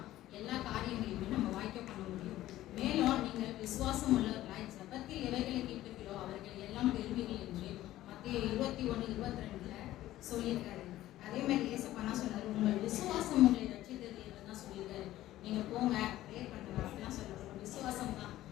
எல்லா காரியங்களையுமே நம்ம வாய்க்க பண்ண முடியும். மேலும் நீங்கள் விசுவாசம் உள்ளவர்களாய் ஜபத்தில் எவைகளை கேட்கிறீர்களோ அவர்கள் எல்லாம் பெறுவீர்கள் என்று மத்தேயு 21:22 சொல்லியிருக்காரு. அதே மாதிரி ஏசப்பா சொன்னாரு, உங்கள் விசுவாசம் உங்களை ரட்சித்தது தான் சொல்லியிருக்காரு. நீங்க போங்க ப்ரேயர் பண்ணுங்க அப்படிலாம் சொல்றாரு. உங்க விசுவாசம் தான்.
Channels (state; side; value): quieter; right; 14.8 dB